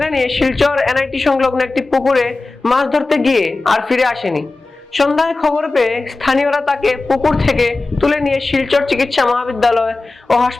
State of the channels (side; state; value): right; quieter; 3.4 dB